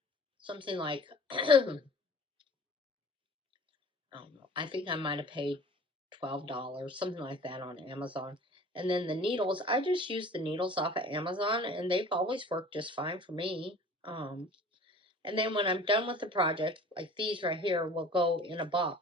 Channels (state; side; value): normal; both; correlation 0.45